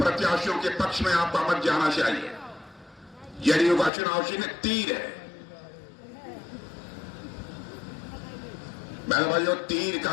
के पक्ष में आपका मत जाना चाहिए। जेडीयू का चुनाव चिन्ह तीर है। बहनों भाइयों, तीर का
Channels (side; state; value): right; drops out; at 3.9 s